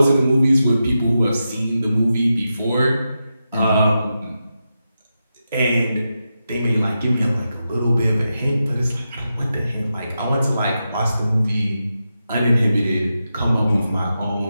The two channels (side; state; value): both; inverted; correlation -0.89